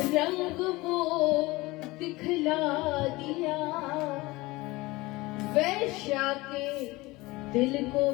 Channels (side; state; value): right; quieter; 21.2 dB